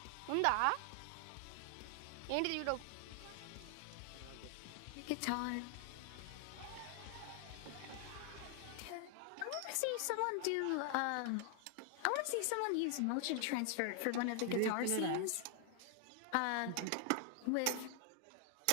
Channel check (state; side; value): different; both; correlation 0.00